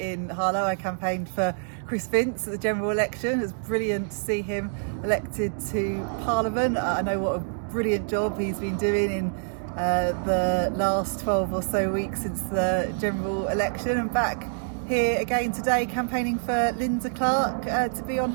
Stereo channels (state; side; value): silent; left; digital silence